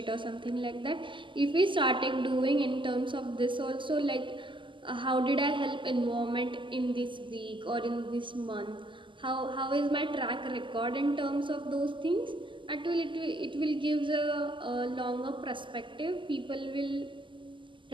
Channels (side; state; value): left; late; 0.24 ms